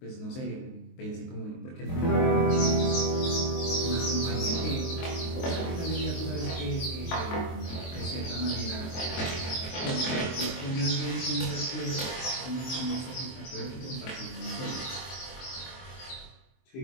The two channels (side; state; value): right; late; 23 ms